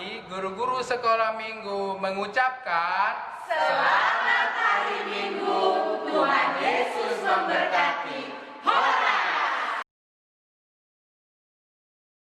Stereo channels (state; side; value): identical; both; correlation 1.00